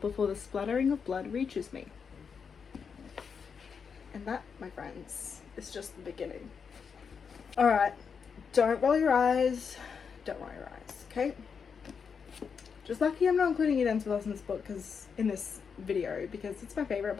the splattering of blood reaches me. And that, my friends, is just the beginning. Alright, don't roll your eyes. Don't roll your eyes, okay? Just lucky I'm not including Eden with us in this book, in this video, because it's my favourite,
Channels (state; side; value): quieter; right; 6.2 dB